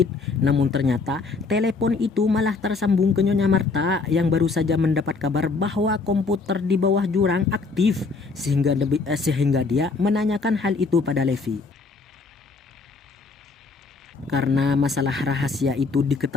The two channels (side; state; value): right; quieter; 4.2 dB